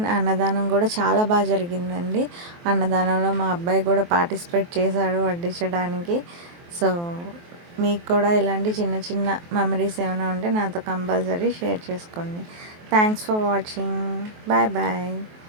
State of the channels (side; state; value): left; late; 23 ms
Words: అన్నదానం కూడా చాలా బాగా జరిగిందండి. అన్నదానంలో మా అబ్బాయి కూడా పార్టిసిపేట్ చేశాడు వడ్డించడానికి. సో మీకు కూడా ఇలాంటి చిన్న చిన్న మెమరీస్ ఏమైనా ఉంటే నాతో కంపల్సరీ షేర్ చేసుకోండి. Thanks for watching. Bye bye.